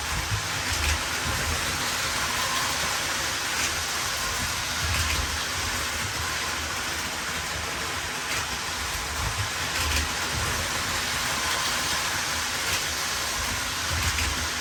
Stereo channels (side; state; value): both; identical; correlation 1.00